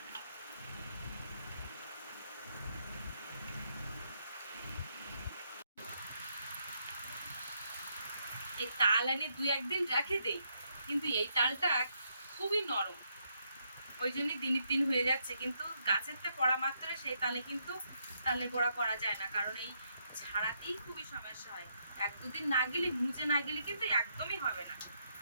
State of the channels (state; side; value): inverted; both; correlation -0.76